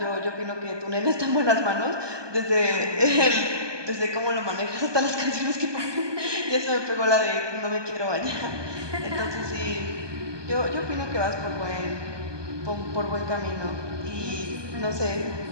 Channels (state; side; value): late; left; 1.2 ms